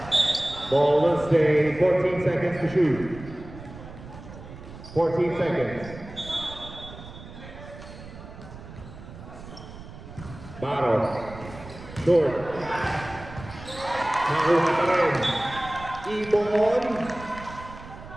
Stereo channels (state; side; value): noise; right; rumble, 15 dB below the sound